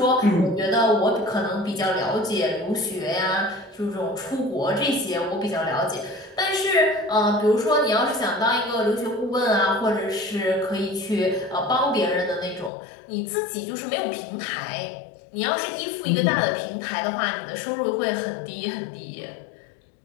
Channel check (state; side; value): drops out; right; at 12.7 s